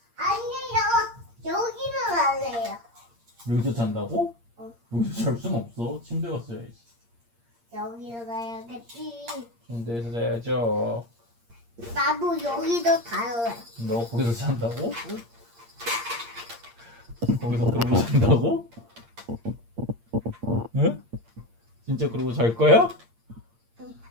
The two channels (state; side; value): late; left; 8.6 ms